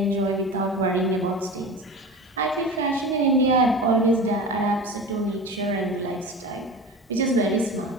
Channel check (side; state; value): both; normal; correlation 0.32